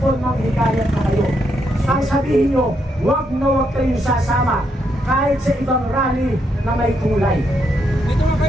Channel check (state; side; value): normal; both; correlation 0.78